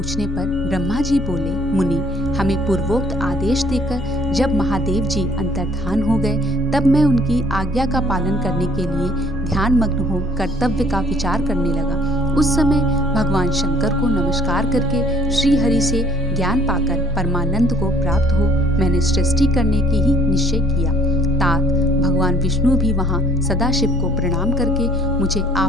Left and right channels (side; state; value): both; normal; correlation 0.59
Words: पर ब्रह्मा जी बोले, मुनि, हमें पूर्वोक्त आदेश देकर जब महादेव जी अंतर्धान हो गए तब मैं उनकी आज्ञा का पालन करने के लिए ध्यान मग्न हो कर्तव्य का विचार करने लगा। उस समय भगवान शंकर को नमस्कार करके श्री हरि से ज्ञान पाकर परमानंद को प्राप्त हो मैंने सृष्टि करने की ही निश्चय किया। तात भगवान विष्णु भी वहाँ सदाशिव को प्रणाम करके मुझे